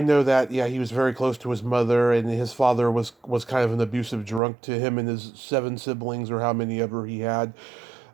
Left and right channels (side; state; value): left; drops out; at 4.4 s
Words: know that. Yeah, he was very close to his mother, and his father was kind of an abusive drunk to him and his 7 siblings, or how many ever he had.